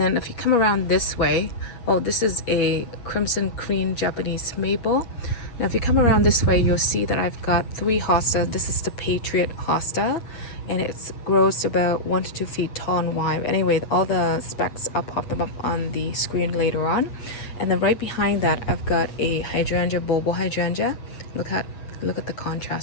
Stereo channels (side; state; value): right; late; 8.3 ms